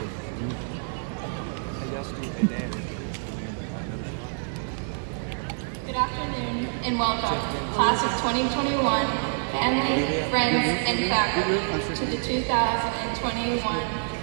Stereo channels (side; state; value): left; silent; digital silence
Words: Good afternoon and welcome, class of 2021, family, friends, and faculty, to the 2021